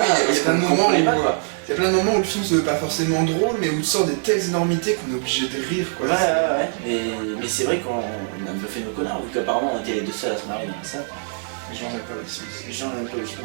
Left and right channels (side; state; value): left; silent; 64 dB below the other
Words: il y a plein de moments où comprenait pas, quoi. il y a plein de moments où le film se veut pas forcément drôle, mais où il sort des telles énormités qu'on est obligé de rire quoi. Ouais. Mais c'est vrai qu'on a un peu fait nos connards, vu qu'apparemment on était les deux seuls à s'en arriver comme ça. Les gens n'aiment pas Will Smith. Les gens n'aiment pas le film,